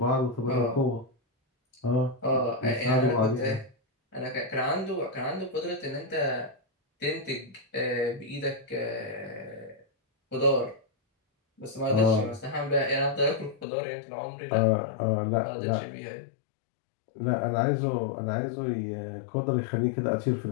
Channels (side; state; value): right; drops out; at 13.7 s